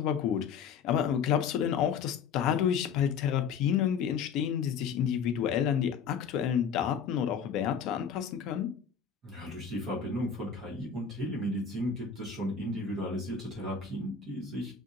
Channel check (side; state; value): right; quieter; 6.7 dB